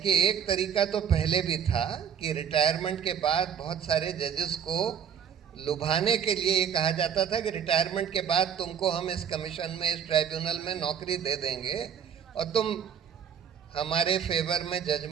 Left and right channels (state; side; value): quieter; left; 8.2 dB